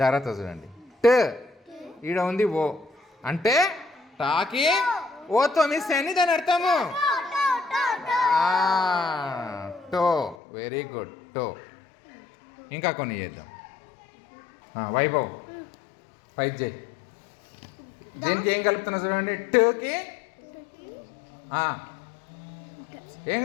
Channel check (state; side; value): drops out; right; at 10.4 s